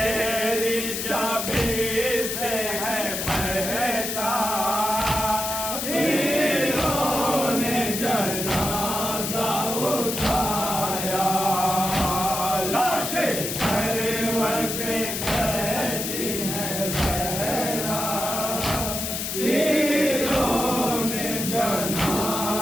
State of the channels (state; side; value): noise; left; hiss, 3 dB below the sound